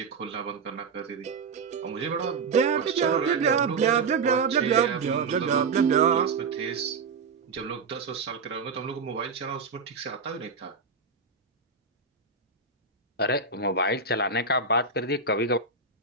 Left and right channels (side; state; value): left; quieter; 4.7 dB